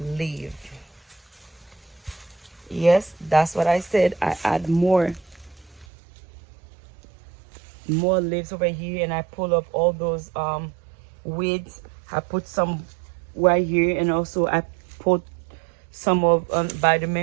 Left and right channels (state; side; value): drops out; left; at 5.9 s